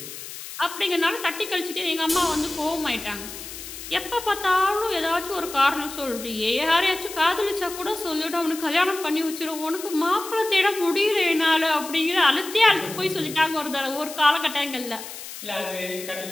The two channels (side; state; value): left; noise; hiss, 11 dB below the sound